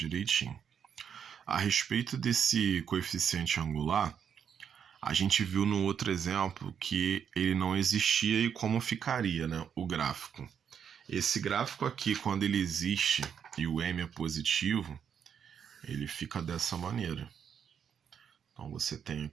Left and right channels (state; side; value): quieter; left; 7.8 dB